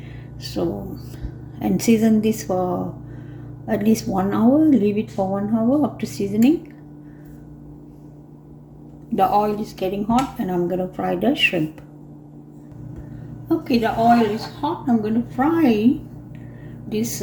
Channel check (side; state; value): both; identical; correlation 1.00